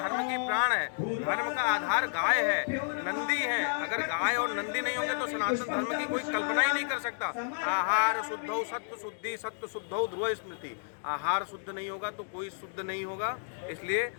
धर्म की प्राण है। धर्म का आधार गाय है, नंदी है। अगर गाय और नंदी नहीं होंगे तो सनातन धर्म की कोई कल्पना ही नहीं कर सकता। आहार शुद्धौ सत्व शुद्धि, सत्व शुद्धौ ध्रुव स्मृति। आहार शुद्ध नहीं होगा तो कोई शुद्ध नहीं होगा। इसलिए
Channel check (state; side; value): silent; right; digital silence